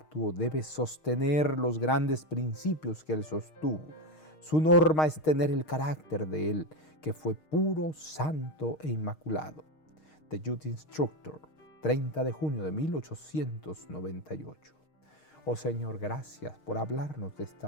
Debe sostener los grandes principios que Él sostuvo. Su norma es tener el carácter de Él, que fue puro, santo e inmaculado. The Youth Instructor, 30 de junio de 1898. Oh Señor, gracias por hablarnos de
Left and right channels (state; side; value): late; right; 6.5 ms